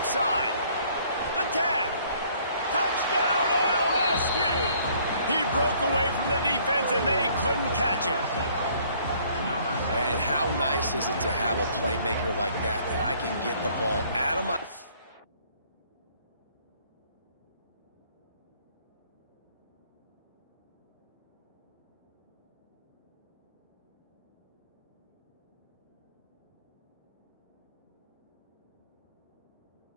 side. The 10. Touchdown, LSU. He broke away from the defense, and they couldn't catch him. And how nice is it to have a playmaker like that I can get the ball out of my...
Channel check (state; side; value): inverted; both; correlation -0.60